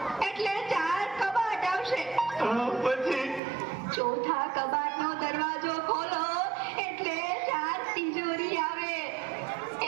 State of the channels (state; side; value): drops out; left; at 3.4 s